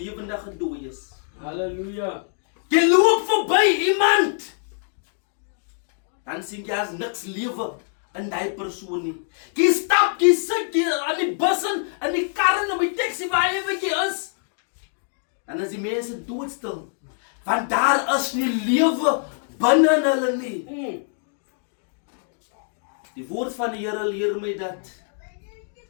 dooies. Halleluja. Jy loop verby iemand. Dan sien jy as niks lewe in die persoon nie. Jy stap, jy sit jy aan die bus en in die kar en op die taxi waar jy is. Dan is die mense doodstil. Want daar is nie lewe binne in hulle nie. Die woord van die Here leer my dat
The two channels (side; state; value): right; silent; digital silence